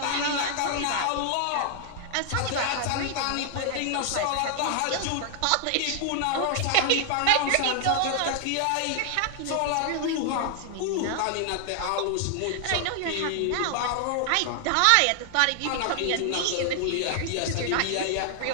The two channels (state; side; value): different; both; correlation 0.00